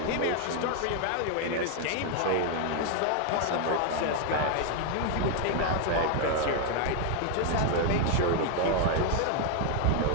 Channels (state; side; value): different; both; correlation 0.01